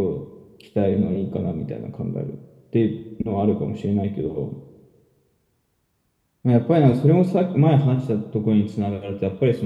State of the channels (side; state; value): both; identical; correlation 1.00